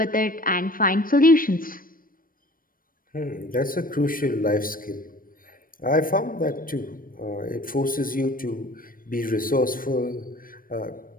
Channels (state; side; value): late; right; 0.41 ms